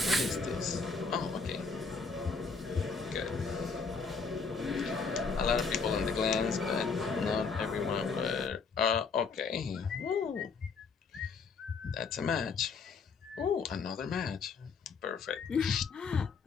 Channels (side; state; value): right; quieter; 4.9 dB